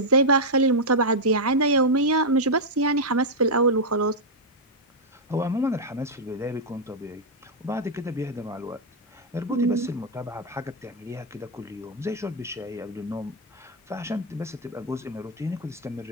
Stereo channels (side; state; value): both; normal; correlation -0.03